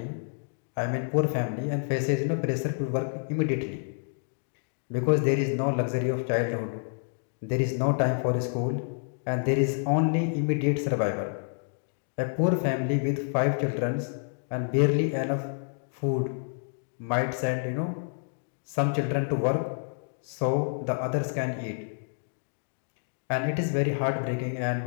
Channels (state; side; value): silent; right; digital silence